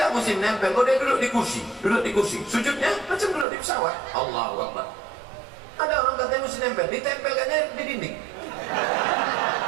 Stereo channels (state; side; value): drops out; left; at 3.5 s